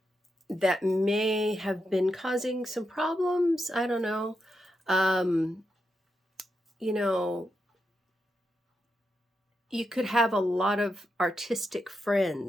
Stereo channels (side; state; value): both; normal; correlation 0.85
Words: may have been causing some problems. I don't know. You know, You could have a lot of artistic